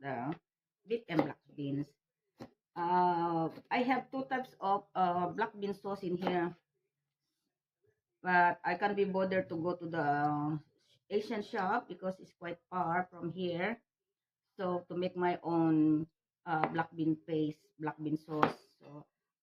beef and black beans. I have two types of black bean sauce in here, but I can't be bothered to go to the Asian shop because it's quite far from here. So to make my own black bean paste, black bean sauce, so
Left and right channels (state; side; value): identical; both; correlation 1.00